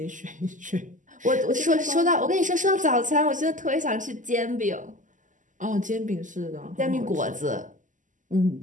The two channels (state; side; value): late; left; 0.37 ms